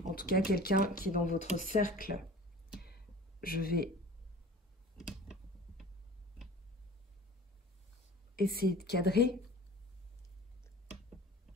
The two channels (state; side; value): normal; both; correlation 0.41